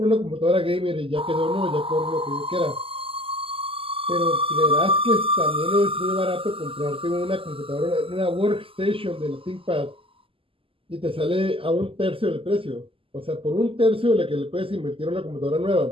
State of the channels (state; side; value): late; left; 0.26 ms